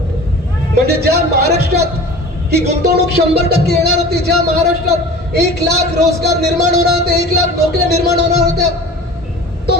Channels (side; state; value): both; normal; correlation 0.40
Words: म्हणजे ज्या महाराष्ट्रात ही गुंतवणूक 100% येणार होती, ज्या महाराष्ट्रात 1,00,000 रोजगार निर्माण होणार होते, 1,00,000 नोकऱ्या निर्माण होणार होत्या, तो